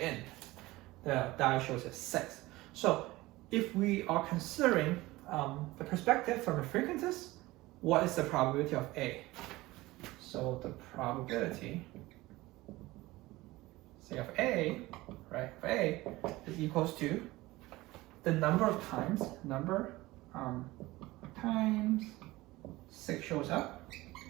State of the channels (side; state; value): left; quieter; 19.4 dB